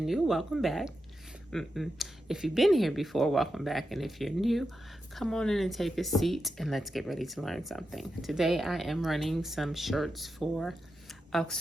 new, welcome back. If you've been here before, welcome back, and if you're new, come on in and take a seat and let's get ready to learn something. Today I am running some shirts for a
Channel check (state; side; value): normal; both; correlation 0.88